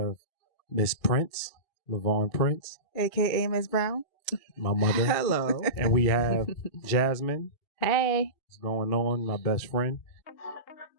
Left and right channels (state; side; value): late; right; 2.8 ms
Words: Miss Prince, Lavarn Prince. A.K.A. Miss Brown. My mother. Hello. And we have Jasmine. Hey. What's going on? My best friend.